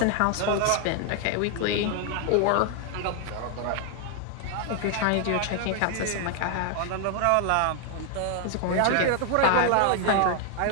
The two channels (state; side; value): different; both; correlation 0.00